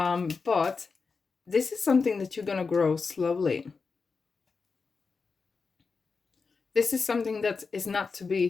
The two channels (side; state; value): right; quieter; 4.8 dB